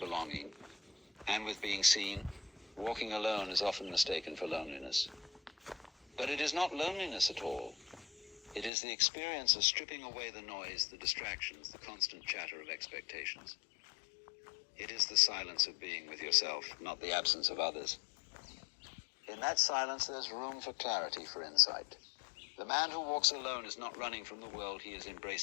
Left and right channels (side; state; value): right; drops out; at 8.7 s